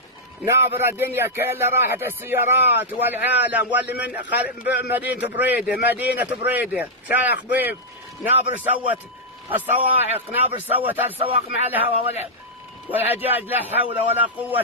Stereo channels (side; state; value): both; normal; correlation -0.07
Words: نابرة الدنيا كلها راحت السيارات والعالم واللي من مدينة بريدة شايخ خبيب. نابر سوت الصواعق، نابر سوت السواق مع الهواء والعجاج. لا حول ولا